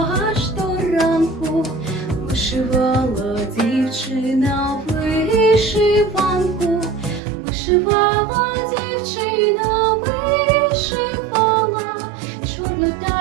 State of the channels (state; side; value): drops out; left; at 7.2 s